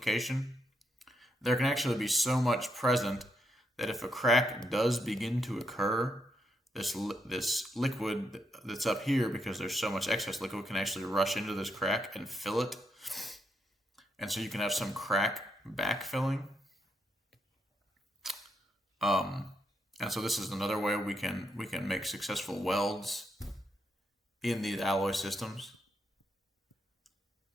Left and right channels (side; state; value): both; normal; correlation 0.80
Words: there can actually be so much present that if a crack does begin to occur, this liquid that's up here, because there's so much excess liquid, can actually rush into this crack and fill it. And so you can have some crack backfilling. And so this is another way we can make successful welds in these alloy systems.